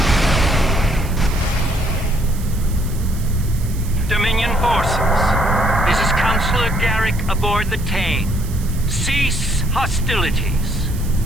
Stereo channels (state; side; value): noise; right; hiss, 17 dB below the sound